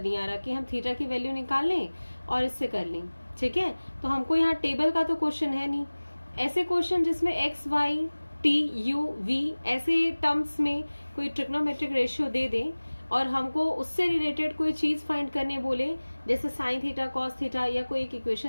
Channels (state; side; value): inverted; both; correlation -1.00